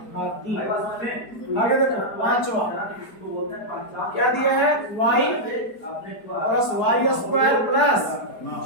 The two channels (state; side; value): late; right; 4.7 ms